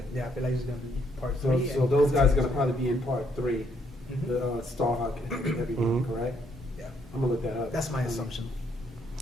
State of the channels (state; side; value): normal; both; correlation 0.71